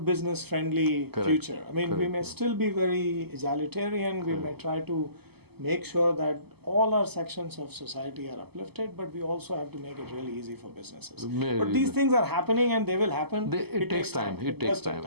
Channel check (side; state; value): left; late; 0.97 ms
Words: friendly future. We may still be very egalitarian. We may try to make sure that all our sections of society are uplifted, but we also have to make it really easy for businesses. But these things are happening and they will happen. It takes time. It takes time.